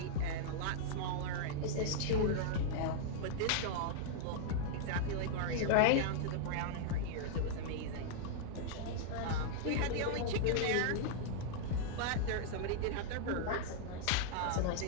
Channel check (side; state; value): both; different; correlation -0.01